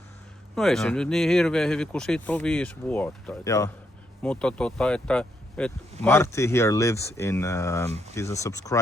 No ei se nyt niin hirveän hyvin, kun siitä on 5 vuotta. Joo. Mutta että Marty here lives in, he's a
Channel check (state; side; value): normal; both; correlation 0.77